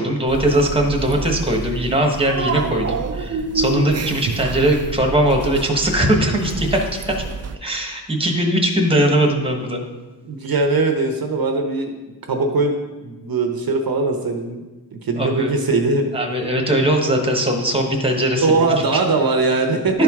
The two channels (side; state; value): both; normal; correlation 0.22